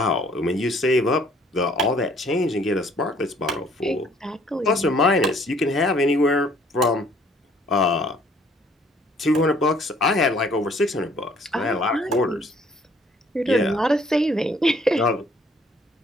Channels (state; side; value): normal; both; correlation 0.60